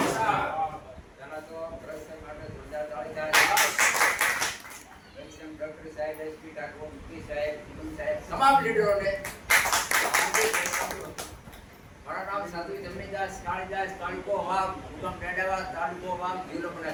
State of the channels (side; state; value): both; identical; correlation 1.00